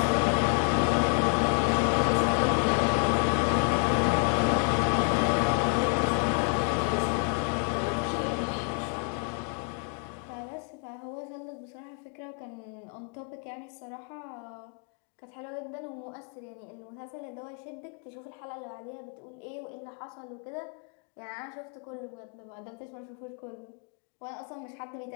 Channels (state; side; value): quieter; right; 39.2 dB